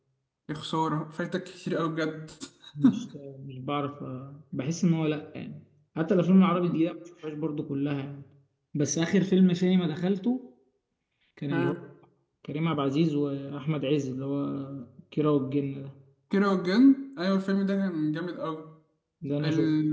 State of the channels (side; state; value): both; identical; correlation 1.00